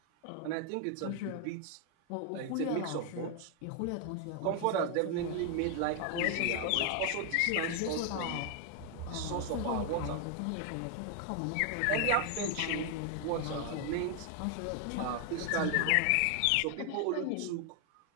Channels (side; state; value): both; different; correlation 0.00